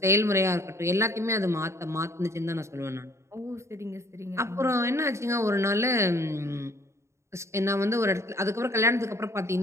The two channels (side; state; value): left; late; 0.14 ms